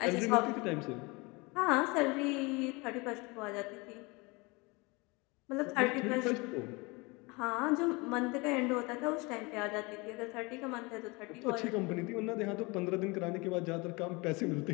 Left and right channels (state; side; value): quieter; right; 26.3 dB